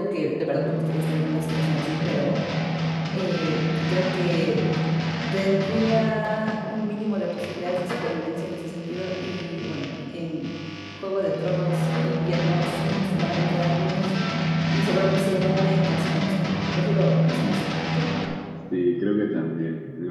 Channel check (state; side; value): identical; both; correlation 1.00